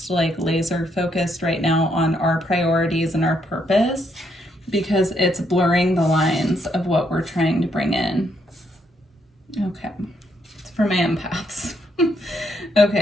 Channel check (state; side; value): normal; both; correlation 0.75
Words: like laser focused right now on our priorities and our purpose, because it's blurring the lines of what we're trying to bring in. Okay, it's for my empaths.